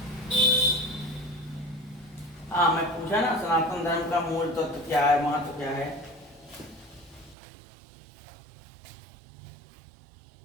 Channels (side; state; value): left; drops out; at 7.4 s